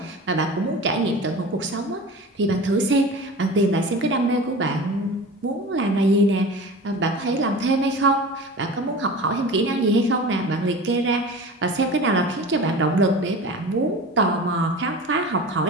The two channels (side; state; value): both; normal; correlation 0.35